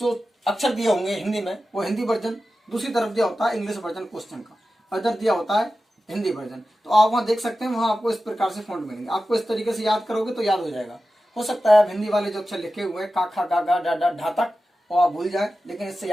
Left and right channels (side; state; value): both; normal; correlation 0.93